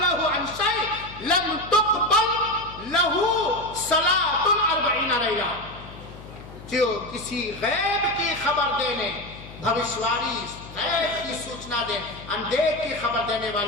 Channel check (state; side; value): noise; left; hum, 16 dB below the sound